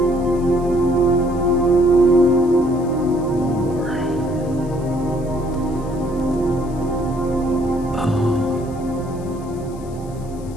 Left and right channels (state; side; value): noise; left; hiss, 25 dB below the sound